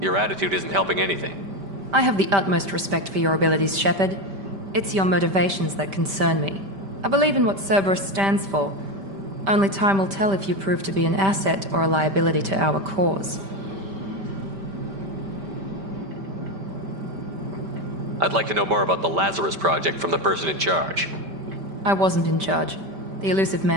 Your attitude isn't helping anything. I have the utmost respect for your abilities, Shepard. It's your motivations that concern me. I believe in what Cerberus stands for. Only time will tell if you prove to be an asset or a liability to our cause. I'd like to know more about the Lazarus Project from the person in charge. I wasn't in charge. The Elusive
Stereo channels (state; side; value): late; left; 5.1 ms